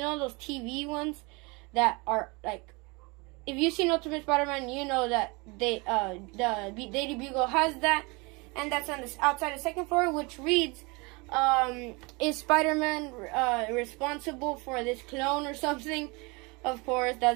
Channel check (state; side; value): quieter; left; 27.5 dB